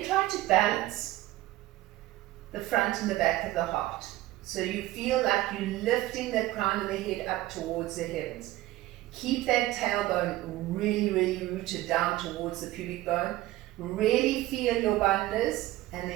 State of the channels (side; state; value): left; quieter; 16.6 dB